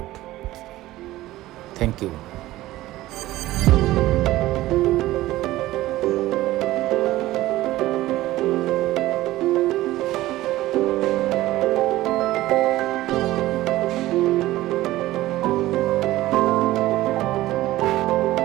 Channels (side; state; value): left; quieter; 16.5 dB